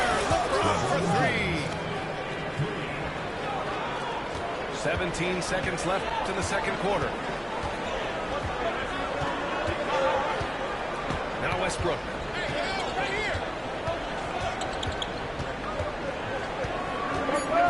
LeBron for three. 17 seconds left in the second quarter. Now Westbrook.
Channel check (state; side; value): identical; both; correlation 1.00